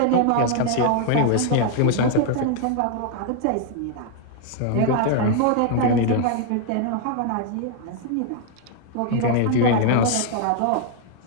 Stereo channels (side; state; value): both; different; correlation 0.00